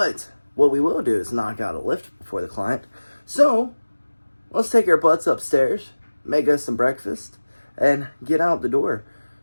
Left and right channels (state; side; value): inverted; both; correlation -1.00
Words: what we will do is knock out a lift before the client. So let's take our butts upstairs, make us some breakfast, and get out the door